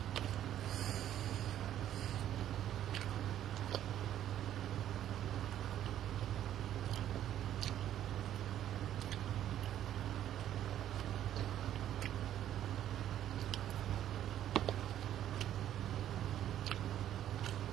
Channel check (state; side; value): quieter; left; 11.4 dB